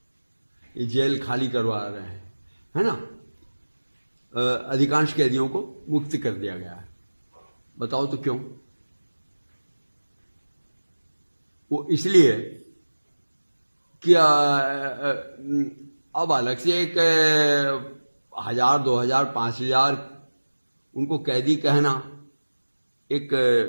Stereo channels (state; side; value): inverted; both; correlation -1.00